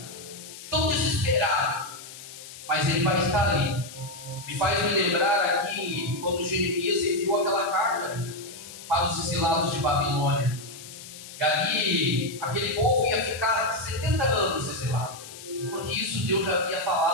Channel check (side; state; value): left; noise; hiss, 15 dB below the sound